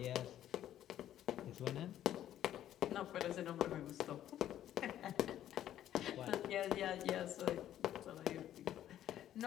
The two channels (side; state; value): right; quieter; 11.8 dB